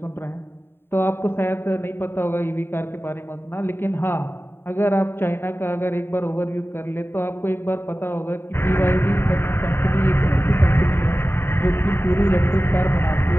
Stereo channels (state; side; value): late; right; 0.11 ms